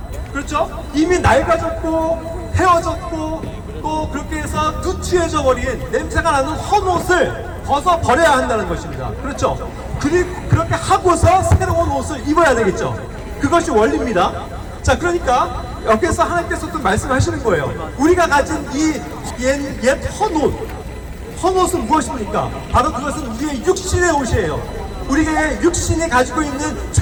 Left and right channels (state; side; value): identical; both; correlation 1.00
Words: 그렇죠? 이미 낡아졌고 헤어졌고 또 그렇게 해서 누추해져 버린 냄새가 나는 헌옷을 벗어 버려야 한다는 것입니다. 그렇죠? 그리고 그렇게 하고서 새로운 옷을 입어야 되겠죠. 그것이 원리입니다. 자, 그러니까 여기서 하나님께서 또 말씀하시는 거예요. 우리가 가진 이 옛 헌옷은 무엇입니까? 바로 그것은 우리의 육신의 옷이에요. 우리의 육신이 가지고 있는